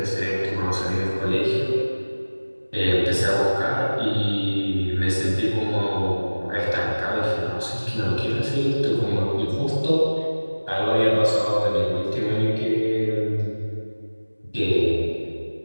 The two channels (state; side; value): inverted; both; correlation -1.00